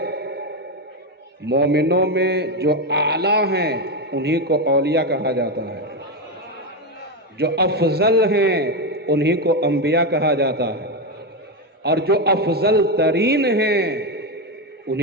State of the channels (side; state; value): both; normal; correlation 0.10